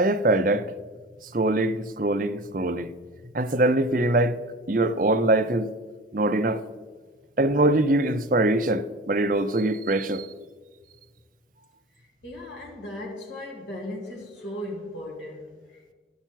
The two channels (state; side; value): normal; both; correlation 0.34